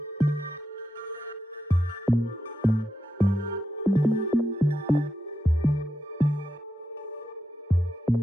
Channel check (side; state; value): both; normal; correlation 0.86